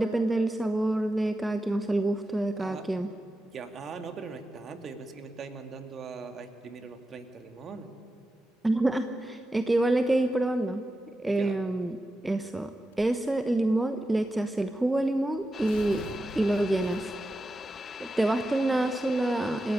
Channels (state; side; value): normal; both; correlation 0.91